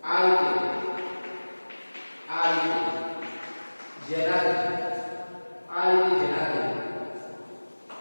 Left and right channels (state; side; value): inverted; both; correlation -1.00